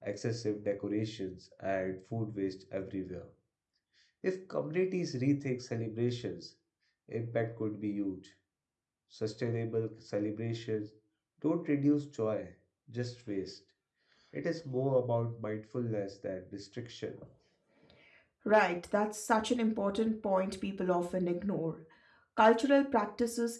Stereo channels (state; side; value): identical; both; correlation 1.00